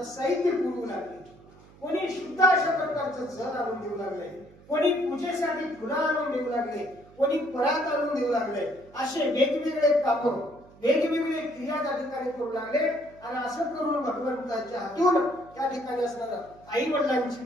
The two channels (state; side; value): noise; right; hum, 24 dB below the sound